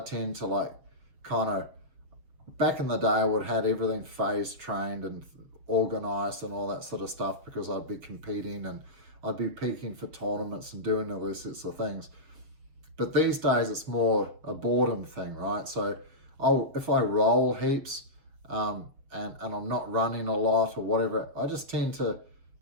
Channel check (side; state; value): left; late; 7.2 ms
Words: tend to like kind of, back in the day I would have had everything phase trained and organized and all that sort of stuff, because I'd be competing and I'd be peaking for tournaments and doing all these sorts of things. But these days it's more a boredom thing, right? So if I roll heaps, and I'm not running a lot or whatever, I just tend to,